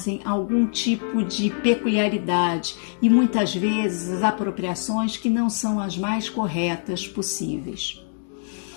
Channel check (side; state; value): right; silent; digital silence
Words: algum tipo de peculiaridade e muitas vezes as apropriações que não são as mais corretas possíveis.